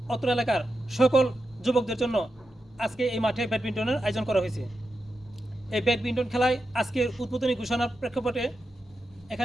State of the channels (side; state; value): both; normal; correlation 0.88